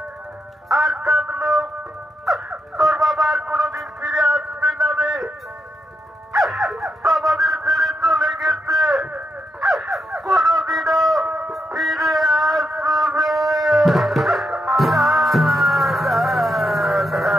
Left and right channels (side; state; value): both; normal; correlation 0.83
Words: আর কাঁদলো, তোর বাবা আর কোনোদিন ফিরে আসবে না রে। আমাদের ছেড়ে চলে গেছে, কোনোদিনও ফিরে আসবে না।